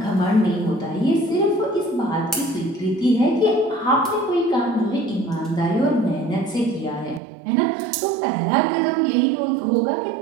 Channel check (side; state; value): left; drops out; at 7.2 s